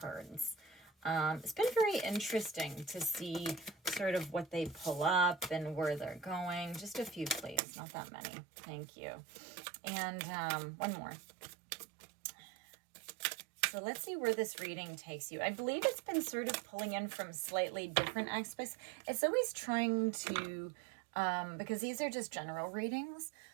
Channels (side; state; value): left; drops out; at 7.6 s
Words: It's been very interesting to see sort of what they pull up and where they're going. Just a few, please. Not that many. Thank you. And one more. So let's see where this reading takes you. I believe it's been sort of pulling in from slightly different aspects. It's always trying to, because these are just general readings,